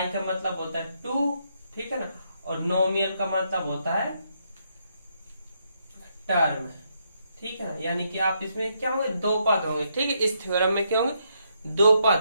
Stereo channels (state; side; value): inverted; both; correlation -0.77